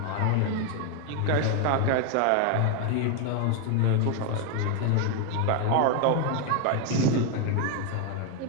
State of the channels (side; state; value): both; different; correlation 0.01